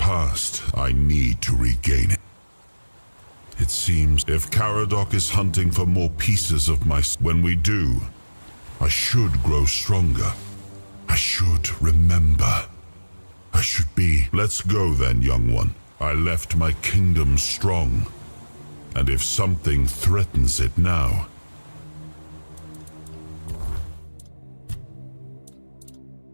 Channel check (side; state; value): both; inverted; correlation -1.00